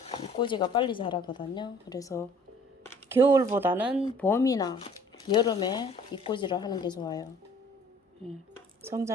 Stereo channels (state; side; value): normal; both; correlation 0.54